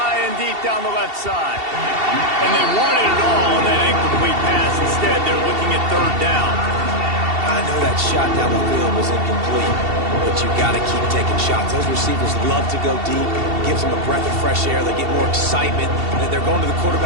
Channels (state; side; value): late; left; 2.7 ms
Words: and deep down the left side. And they wanted it all on that incomplete pass. Instead, they're looking at third down. I know that shot down the field was incomplete, but you got to keep taking shots. Those receivers love to go deep. It gives them a breath of fresh air. They get more excitement, and they're going to the